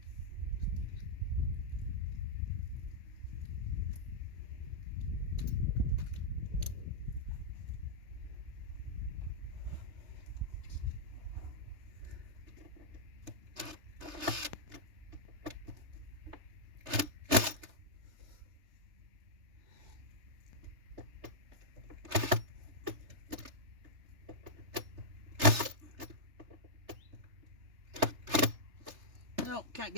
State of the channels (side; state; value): left; late; 3.3 ms